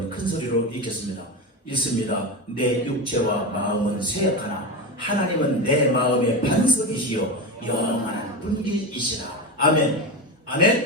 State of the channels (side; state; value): both; normal; correlation 0.19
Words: 큰 소리로 읽겠습니다. 읽습니다. 내 육체와 마음은 쇠약하나 하나님은 내 마음의 반석이시요 영원한 분기이시라. 아멘.